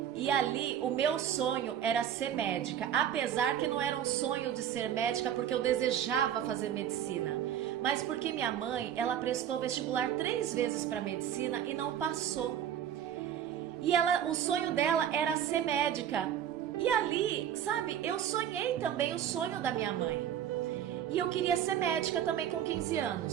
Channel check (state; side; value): quieter; left; 9.9 dB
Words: E ali o meu sonho era ser médica, apesar que não era um sonho de ser médica porque eu desejava fazer medicina, mas porque minha mãe, ela prestou vestibular 3 vezes para medicina e não passou. E o sonho dela era ser médica. E ali, sabe, eu sonhei também o sonho da minha mãe. E eu queria ser médica também com 15